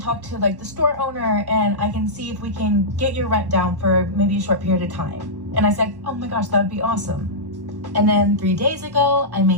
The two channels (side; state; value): left; late; 1.1 ms